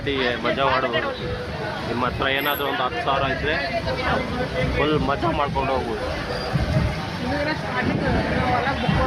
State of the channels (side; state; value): both; identical; correlation 1.00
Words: ಮಜಾ ಮಾಡ್ಬೋದು. ನಿಮ್ಮ ಹತ್ರ ಏನಾದರೂ ಒಂದು 10,000 ಇದ್ದರೆ ಫುಲ್ ಮಜಾ ಮಾಡ್ಕೊಂಡು ಹೋಗ್ಬೋದು.